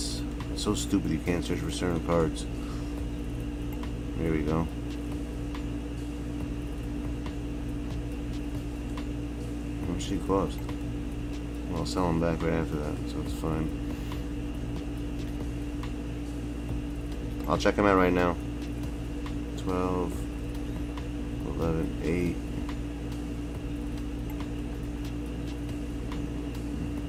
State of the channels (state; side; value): identical; both; correlation 1.00